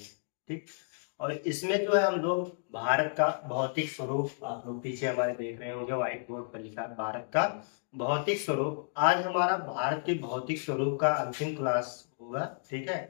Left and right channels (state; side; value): silent; right; digital silence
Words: ठीक। और इसमें जो है हम लोग भारत का भौतिक स्वरूप, आप लोग पीछे हमारे देख रहे होंगे व्हाइट बोर्ड पर लिखा है भारत का भौतिक स्वरूप। आज हमारा भारत के भौतिक स्वरूप का अंतिम क्लास होगा, ठीक है।